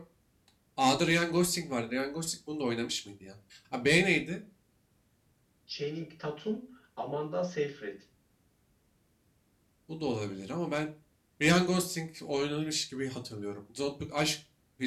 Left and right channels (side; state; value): both; identical; correlation 1.00